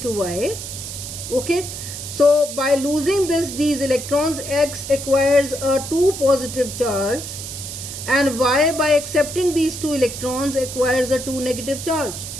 to Y. Okay, so by losing these electrons, X acquires a 2 positive charge, and Y, by accepting these 2 electrons, acquires a 2 negative charge.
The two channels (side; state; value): right; noise; hiss, 8 dB below the sound